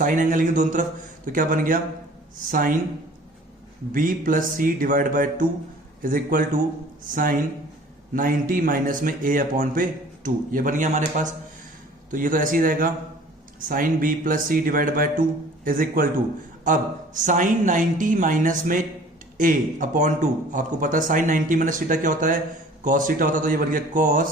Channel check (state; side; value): normal; both; correlation 0.49